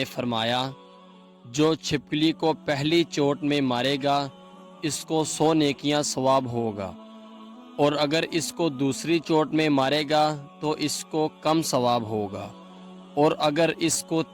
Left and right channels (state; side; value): identical; both; correlation 1.00